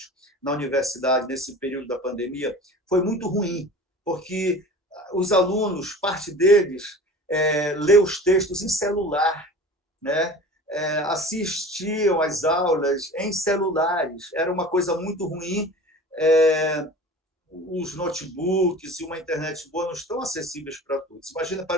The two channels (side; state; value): both; normal; correlation 0.39